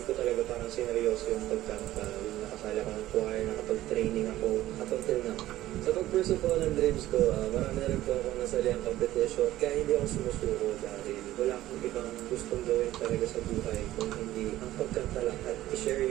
ko talaga parang sineryoso yung pagkanta. Yung nakasali ako ng choir, nakapag-training ako, up until now. Sa pag-pursue po ng dreams ko, marami na rin po akong nasali ang competition. Kaya hindi ako sumusuko dahil wala akong ibang gustong gawin talaga sa buhay kung hindi ang pagkanta lang at i-share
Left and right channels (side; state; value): left; quieter; 14.8 dB